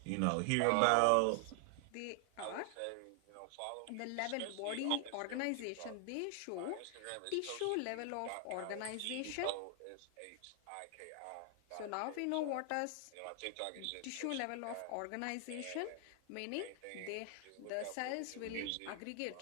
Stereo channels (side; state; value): both; different; correlation 0.00